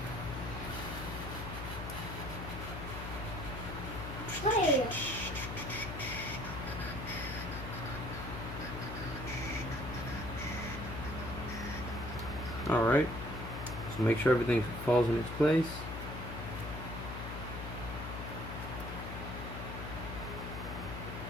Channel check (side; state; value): left; noise; hum, 7 dB below the sound